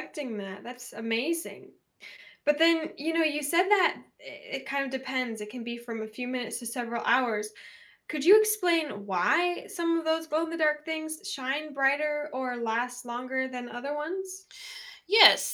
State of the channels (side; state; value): both; identical; correlation 1.00